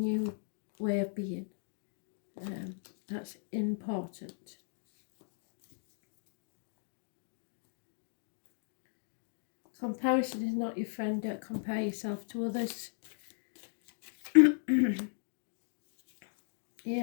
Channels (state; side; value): silent; right; digital silence